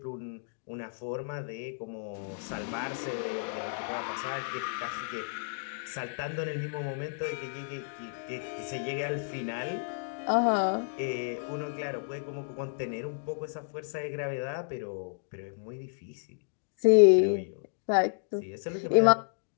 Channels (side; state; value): right; silent; digital silence